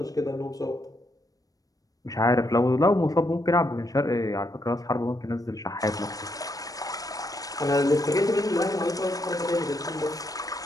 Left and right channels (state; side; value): late; right; 0.18 ms